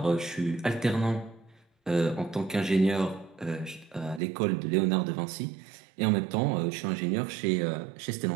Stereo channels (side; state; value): left; drops out; at 4.2 s